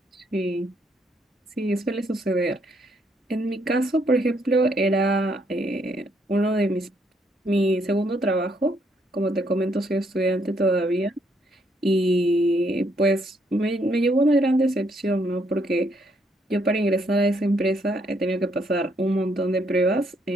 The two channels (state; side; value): normal; both; correlation 0.72